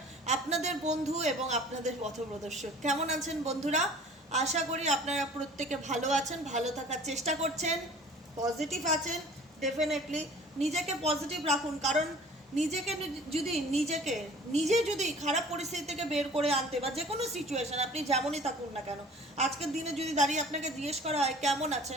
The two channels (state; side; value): normal; both; correlation 0.47